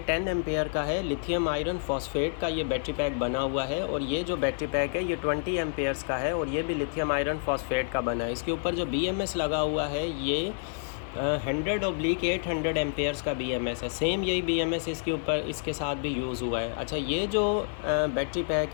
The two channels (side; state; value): right; silent; digital silence